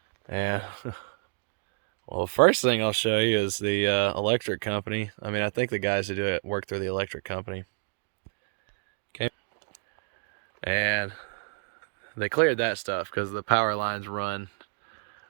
And well, the first thing I'll show you is the electric company. I think the guys who do it work through the electric company. Okay. And they cleared that stuff because the power lines run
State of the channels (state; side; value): silent; left; digital silence